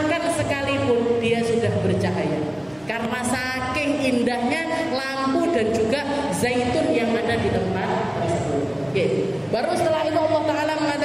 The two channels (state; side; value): noise; left; hum, 29 dB below the sound